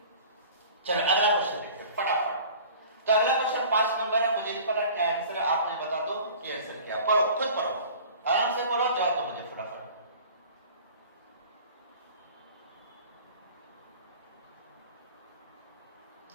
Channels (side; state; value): both; inverted; correlation -0.44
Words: चलो अगला क्वेश्चन देखते हैं फटाफट। तो अगला क्वेश्चन 5 नंबर है, मुझे नहीं पता क्या आंसर है, आप मुझे बता दो कि आंसर क्या। पढ़ो, खुद पढ़ो, आराम से पढ़ो, जवाब दो मुझे फटाफट।